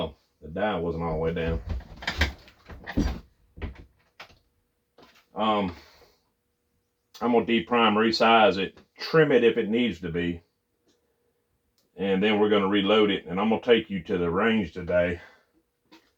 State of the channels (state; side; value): identical; both; correlation 1.00